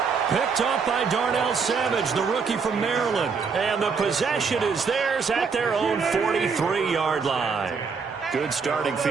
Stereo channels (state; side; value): quieter; left; 5.4 dB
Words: Picked up by Darnell Savage, the rookie from Maryland. And the possession is theirs at their own 43-yard line. Good starting